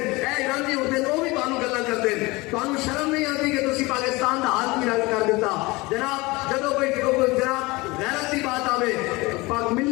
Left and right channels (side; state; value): right; quieter; 23.0 dB